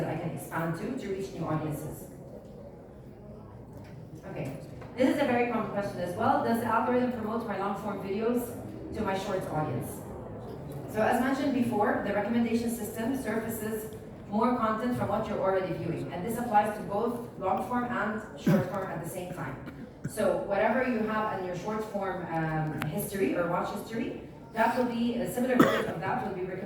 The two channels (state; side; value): identical; both; correlation 1.00